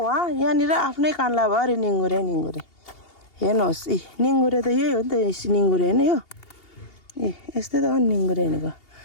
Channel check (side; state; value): right; late; 2.8 ms